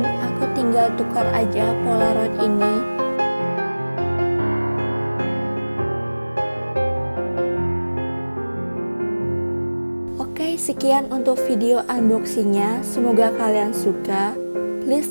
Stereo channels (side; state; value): both; inverted; correlation -1.00